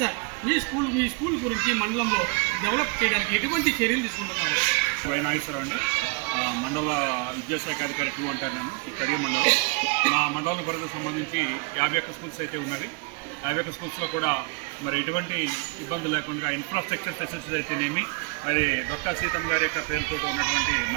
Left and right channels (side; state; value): left; quieter; 32.6 dB